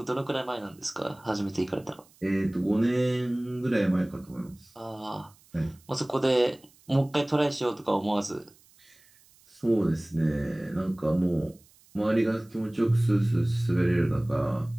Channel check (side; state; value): right; noise; hiss, 29 dB below the sound